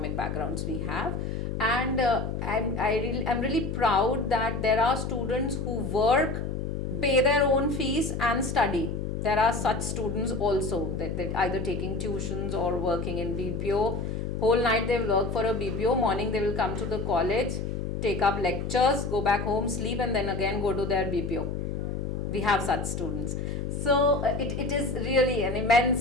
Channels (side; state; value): left; noise; hum, 3 dB below the sound